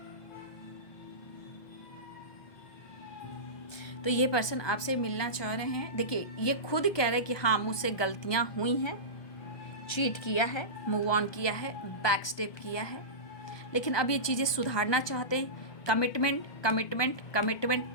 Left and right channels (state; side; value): late; right; 1.2 ms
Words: तो ये पर्सन आपसे मिलना चाह रहे हैं। देखिए ये खुद कह रहे हैं कि हाँ मुझसे गलतियां हुई हैं, चीट किया है, मूव ऑन किया है, बैक स्टेप किया है, लेकिन अब ये चीज़ें सुधारना चाहते हैं। Commitment commitment